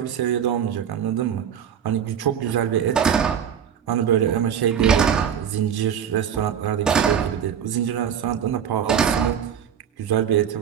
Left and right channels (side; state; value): left; quieter; 8.4 dB